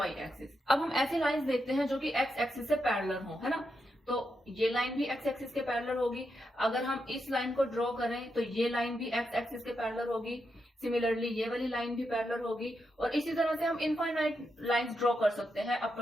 एक्सिस। अब हम ऐसी लाइंस देखते हैं जो कि एक्स एक्सिस से पैरेलल हो, है ना। तो ये लाइन भी एक्स एक्सिस के पैरेलल होगी। अगर हम इस लाइन को ड्रॉ करें तो ये लाइन भी एक्स एक्सिस के पैरेलल होगी। सिमिलरली ये वाली लाइन भी पैरेलल होगी, और इसी तरह से हम इनफाइनाइट लाइंस ड्रॉ कर सकते हैं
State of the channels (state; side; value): normal; both; correlation 0.84